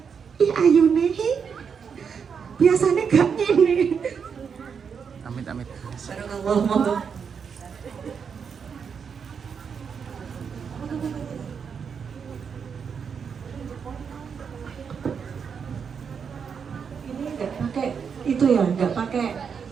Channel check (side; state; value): left; quieter; 6.5 dB